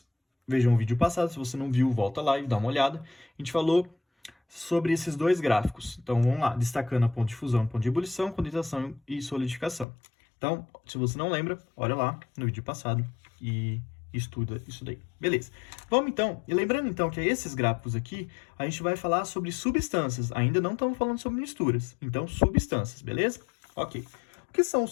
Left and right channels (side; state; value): right; drops out; at 9.9 s